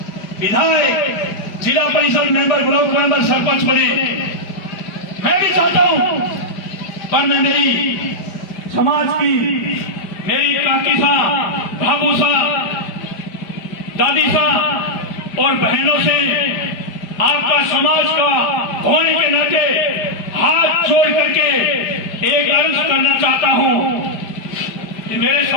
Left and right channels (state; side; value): late; right; 5.0 ms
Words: विधायक जिला परिषद मेंबर ब्लॉक मेंबर सरपंच बने। मैं भी चाहता हूं, पर मैं मेरी समाज की मेरी काकी सा, भाभू सा, दादी सा और बहनों से आपका समाज का होने के नाते हाथ जोड़ करके एक अर्ज करना चाहता हूं कि मेरे